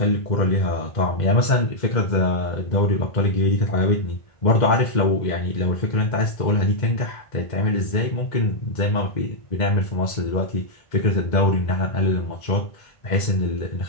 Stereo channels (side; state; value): right; late; 2.1 ms